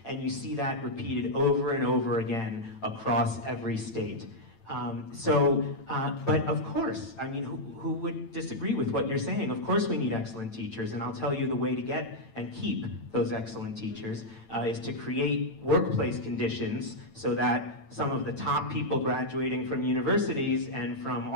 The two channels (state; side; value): late; right; 8.9 ms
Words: And you see that repeated over and over again across every state. But of course, I mean, who would disagree with what you're saying? Of course we need excellent teachers, and I'll tell you the way to get and keep those excellent teachers is to create workplace conditions so that some of the top people graduating from universities and from